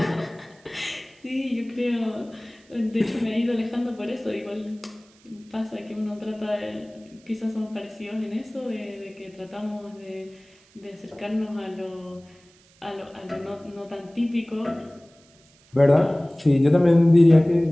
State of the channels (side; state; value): right; noise; hiss, 30 dB below the sound